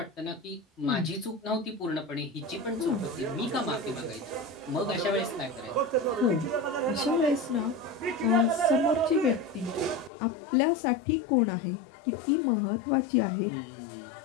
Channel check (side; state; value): right; drops out; at 10.1 s